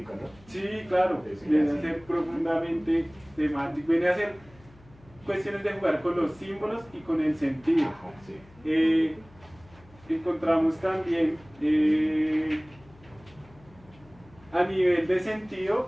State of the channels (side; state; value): left; noise; hum, 25 dB below the sound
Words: ¿no? Sí, claro, viene a ser profundamente semántico, viene a ser cuestiones de jugar con los símbolos y con el sentido. Ajá, sí. Encontramos también a nivel de sentido